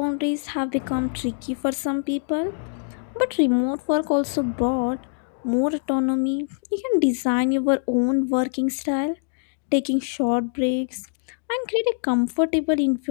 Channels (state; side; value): silent; right; digital silence